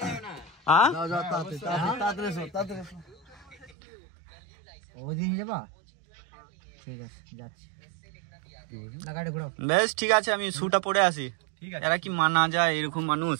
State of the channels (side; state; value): left; drops out; at 3.8 s